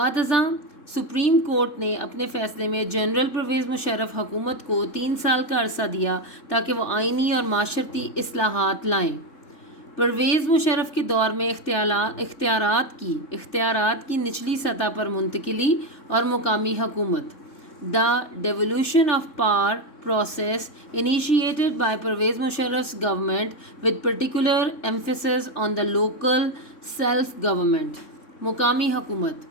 ازاں سپریم کورٹ نے اپنے فیصلے میں جنرل پرویز مشرف حکومت کو 3 سال کا عرصہ دیا تاکہ وہ آئینی اور معاشرتی اصلاحات لائیں۔ پرویز مشرف کے دور میں اختیارات کی نچلی سطح پر منتقلی اور مقامی حکومت۔ The devolution of power process initiated by Pervez Musharraf's government with particular emphasis on the local self-government۔ مقامی حکومت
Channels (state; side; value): late; right; 3.3 ms